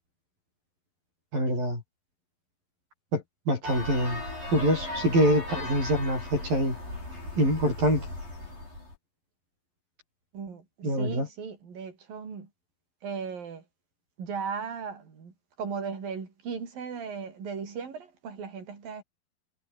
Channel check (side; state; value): left; late; 11 ms